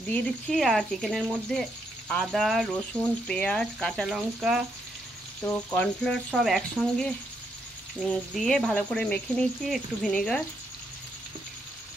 দিয়ে দিচ্ছি। আর চিকেনের মধ্যে আদা, রসুন, পেঁয়াজ, কাঁচা লঙ্কা, তো কর্নফ্লাওয়ার সব একসঙ্গে দিয়ে ভালো করে মেখে নিয়েছি, একটু ভিনেগার।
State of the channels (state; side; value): normal; both; correlation 0.77